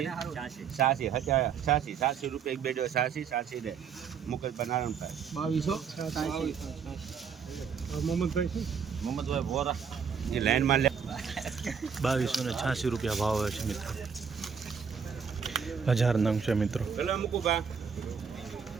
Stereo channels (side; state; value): left; quieter; 6.7 dB